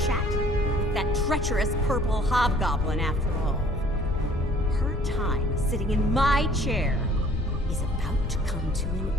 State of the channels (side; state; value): both; normal; correlation 0.55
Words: with that treacherous purple hobgoblin after all. Her time sitting in my chair is about to come to an